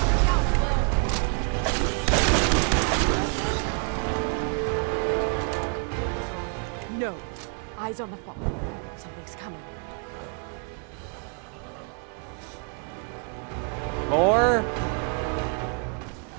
No. Eyes on the fog. Something's coming. More?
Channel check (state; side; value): quieter; left; 37.6 dB